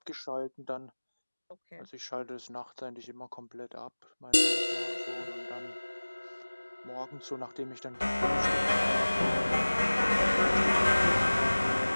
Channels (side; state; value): both; inverted; correlation -1.00